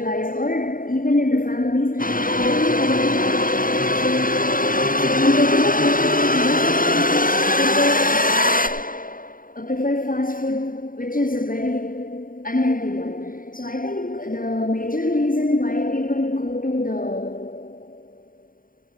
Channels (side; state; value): right; late; 0.40 ms